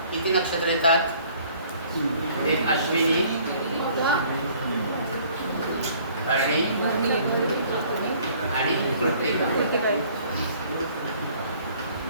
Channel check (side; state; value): both; inverted; correlation -0.57